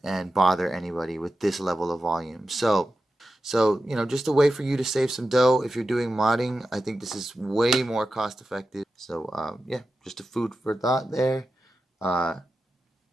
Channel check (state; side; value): normal; both; correlation 0.92